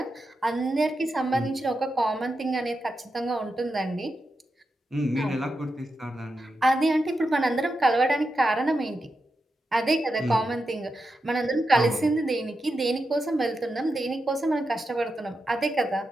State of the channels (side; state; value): both; normal; correlation 0.88